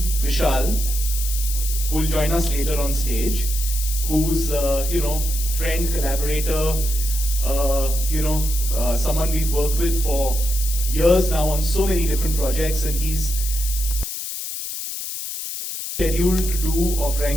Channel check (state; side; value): noise; left; hiss, 6 dB below the sound